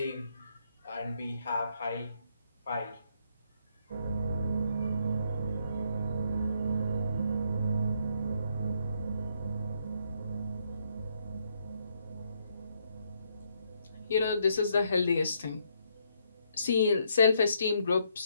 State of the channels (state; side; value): inverted; both; correlation -0.74